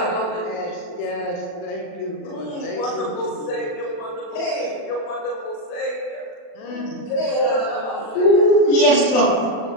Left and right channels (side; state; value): right; late; 40 ms